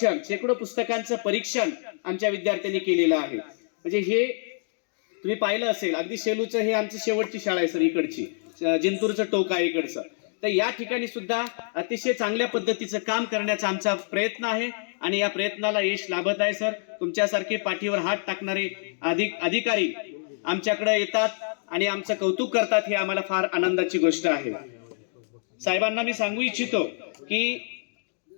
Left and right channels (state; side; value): silent; right; digital silence